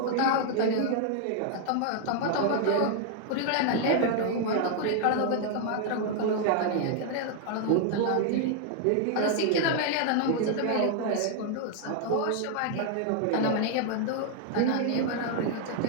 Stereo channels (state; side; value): different; both; correlation 0.00